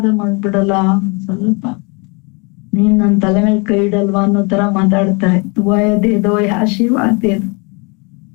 ಮಾಡ್ಬಿಡಲ್ಲ, ಒಂದ್ ಸ್ವಲ್ಪ ನೀನ್ ನನ್ ತಲೆ ಮೇಲೆ ಕೈ ಇಡಲ್ವಾ ಅನ್ನೋ ತರ ಮಾತಾಡ್ತಾರೆ. ದುಆಯ ದೇದೋ, ಆಶೀರ್ವಾದ ದೇದೋ.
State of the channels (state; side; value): quieter; right; 31.3 dB